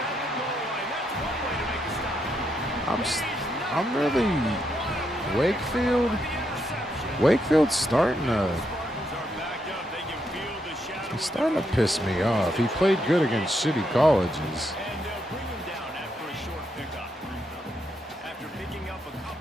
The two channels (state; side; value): normal; both; correlation 0.79